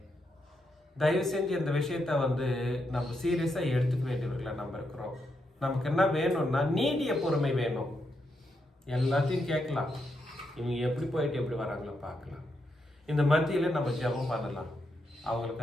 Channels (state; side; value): normal; both; correlation 0.82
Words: தயவு செஞ்சு இந்த விஷயத்த வந்து நம்ம சீரியஸா எடுத்துக்க வேண்டியவர்களா நம்ம இருக்கிறோம். நமக்கு என்ன வேணும்னா நீடிய பொறுமை வேணும். எல்லாத்தையும் கேட்கலாம், இவங்க எப்படி போயிட்டு எப்படி வராங்களோ பார்க்கலாம். இந்த மத்தியில நம்ம ஜெபம் பண்ணலாம்,